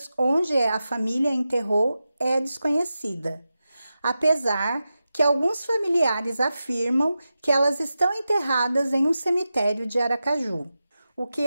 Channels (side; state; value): both; inverted; correlation -0.92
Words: onde a família enterrou, é desconhecida, apesar que alguns familiares afirmam que elas estão enterradas em um cemitério de Aracaju. O que